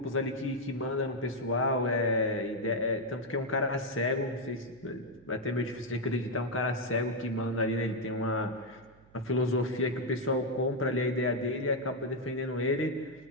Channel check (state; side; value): noise; right; hum, 26 dB below the sound